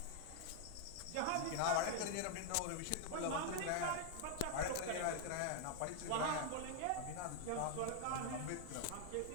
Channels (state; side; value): different; both; correlation 0.00